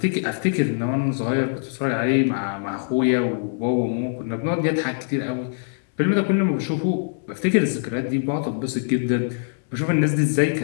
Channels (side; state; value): right; silent; 63 dB below the other